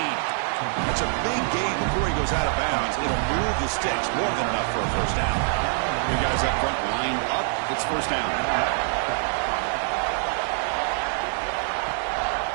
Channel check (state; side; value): silent; left; 57 dB below the other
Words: That's a big gain before he goes out of bounds. It'll move the sticks more than enough for a first down. You guys up front lined up. It's first down.